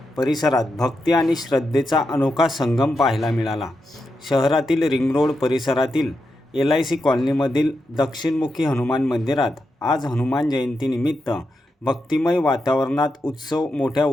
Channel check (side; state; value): both; normal; correlation 0.86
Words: परिसरात भक्ती आणि श्रद्धेचा अनोखा संगम पाहायला मिळाला. शहरातील रिंग रोड परिसरातील LIC कॉलनीमधील दक्षिणमुखी हनुमान मंदिरात आज हनुमान जयंतीनिमित्त भक्तिमय वातावरणात उत्सव मोठ्या